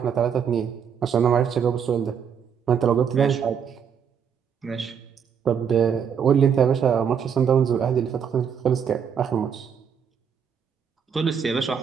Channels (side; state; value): left; quieter; 7.4 dB